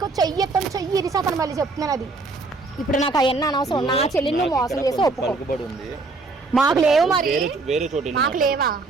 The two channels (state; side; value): quieter; left; 3.7 dB